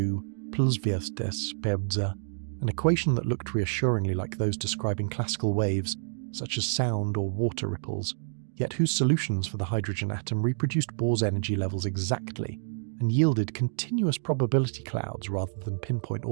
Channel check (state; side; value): silent; left; digital silence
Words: plus vs pebza, an equation that looked reassuringly like those describing classical waves, such as sound or water ripples, yet whose solutions for the hydrogen atom reproduced Bohr's energy levels exactly and yielded continuous probability clouds rather than pinpoint